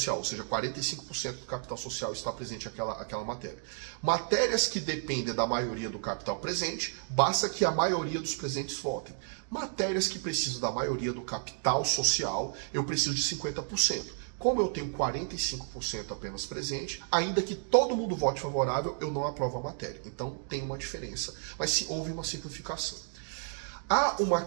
ou seja, 45% do capital social está presente aquela matéria. Matérias que dependem da maioria do capital presente, basta que a maioria dos presentes votem. Matérias que precisam da maioria do capital social, eu preciso de 50%. Como eu tenho 45% apenas presente, ainda que todo mundo vote favorável, eu não aprovo a matéria. Então tem uma diferença, mas sim, houve uma simplificação. Há uma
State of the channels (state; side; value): silent; left; 56 dB below the other